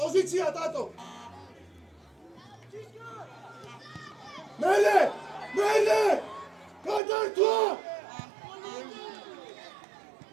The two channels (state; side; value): drops out; left; at 7.0 s